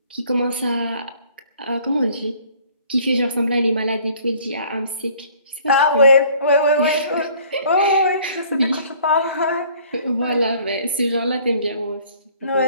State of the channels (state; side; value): inverted; both; correlation -0.55